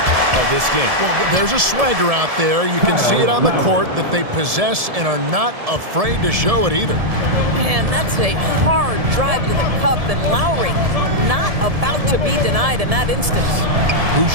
of this game. Well, there's a swagger out there. You can see it on the court that they possess and are not afraid to show it either. Man, that's a hard drive to the cup, and Lowry not about to be denied in that instance.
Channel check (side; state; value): left; late; 1.7 ms